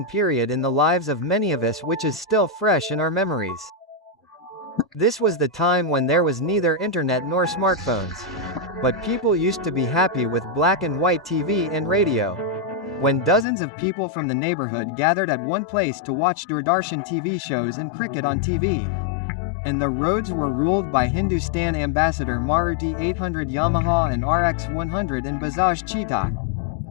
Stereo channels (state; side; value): drops out; right; at 13.5 s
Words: period in the lives of many of us, which is still fresh in our memories. This was the time when there was neither internet nor smartphones. But people used to be happy with black and white TV and radio. When dozens of people from the neighborhood gathered at one place to watch Doordarshan TV shows and cricket on TV. And the roads were ruled by Hindustan Ambassador Maruti 800 Yamaha and RX 100 and Bajaj Cheetah.